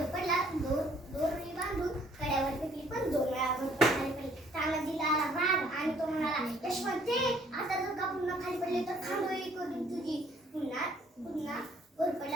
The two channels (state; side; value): normal; both; correlation 0.62